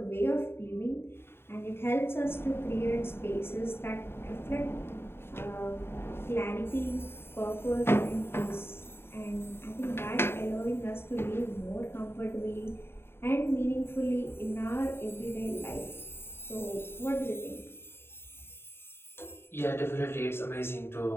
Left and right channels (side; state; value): right; late; 0.11 ms